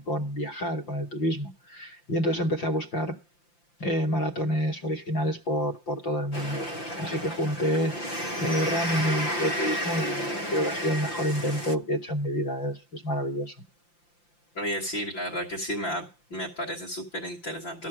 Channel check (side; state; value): right; late; 5.8 ms